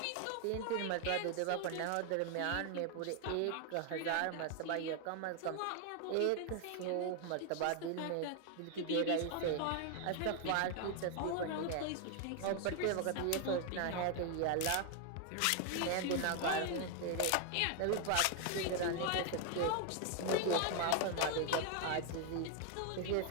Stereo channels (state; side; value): different; both; correlation 0.00